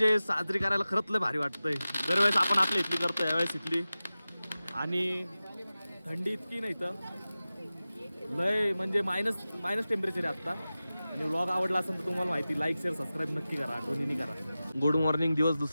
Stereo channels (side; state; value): both; inverted; correlation -0.96